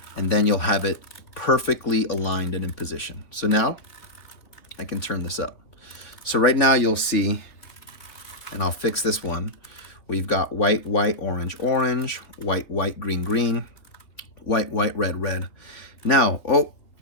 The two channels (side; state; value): right; late; 3.4 ms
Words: and then you'll have it perfectly aligned and in position. So now I can turn this up. So right now you'll see, and I'll fix this one. We've got white, white, orange, orange, white, white, green, green, white, white, red, red. Now, oh,